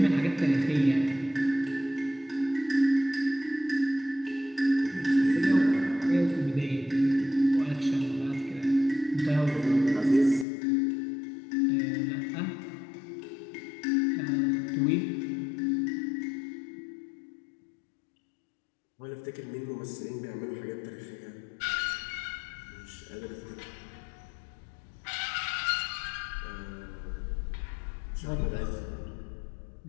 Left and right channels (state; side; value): drops out; right; at 10.5 s